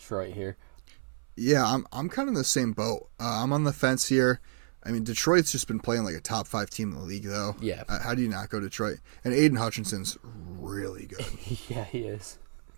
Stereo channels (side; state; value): left; silent; 58 dB below the other